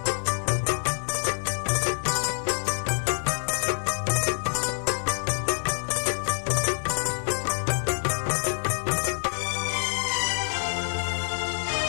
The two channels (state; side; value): silent; right; 60 dB below the other